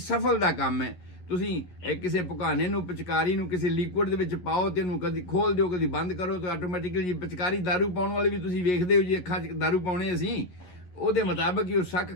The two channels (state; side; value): late; right; 11 ms